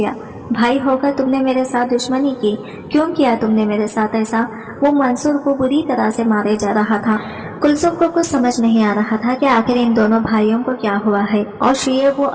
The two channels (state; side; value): identical; both; correlation 1.00